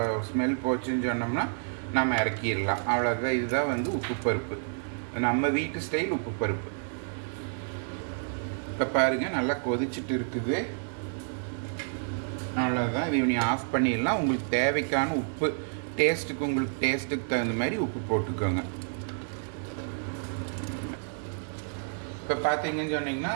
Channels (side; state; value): left; silent; 58 dB below the other